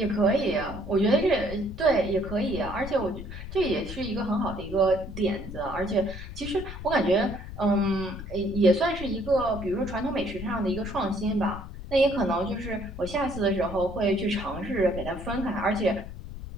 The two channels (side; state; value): left; noise; rumble, 10 dB below the sound